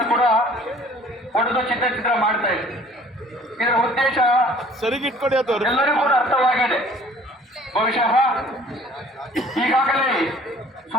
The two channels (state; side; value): normal; both; correlation 0.53